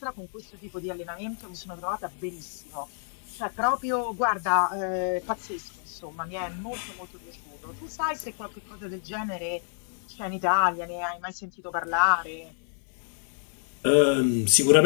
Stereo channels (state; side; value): silent; right; digital silence